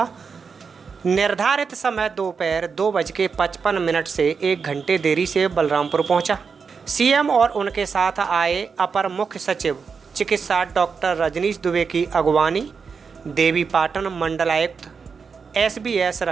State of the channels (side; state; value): left; quieter; 5.6 dB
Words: निर्धारित समय दोपहर 2:55 से 1 घंटे देरी से बलरामपुर पहुंचा। सीएम और उनके साथ आए अपर मुख्य सचिव चिकित्सा डॉक्टर रजनीश दुबे की अगवानी, देवीपाटन मंडलायुक्त SBS